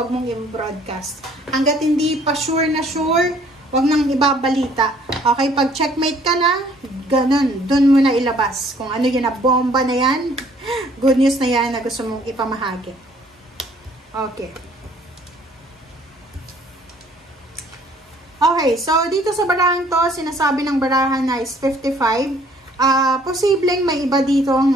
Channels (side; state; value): both; normal; correlation 0.59